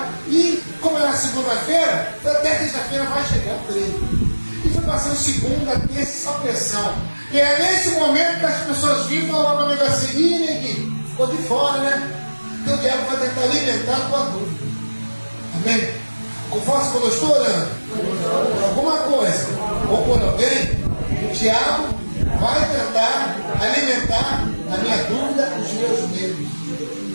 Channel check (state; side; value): inverted; both; correlation -1.00